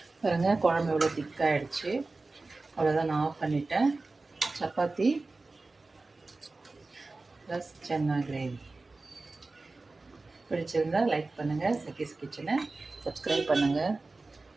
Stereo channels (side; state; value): left; quieter; 3.4 dB